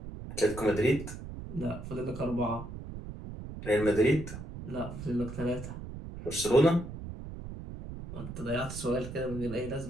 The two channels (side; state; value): right; noise; rumble, 10 dB below the sound